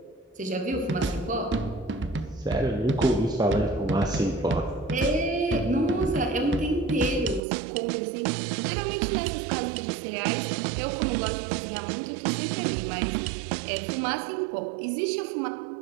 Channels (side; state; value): left; drops out; at 7.4 s